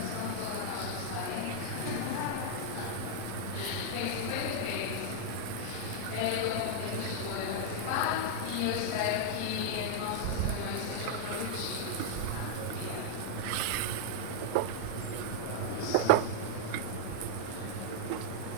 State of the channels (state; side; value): different; both; correlation -0.01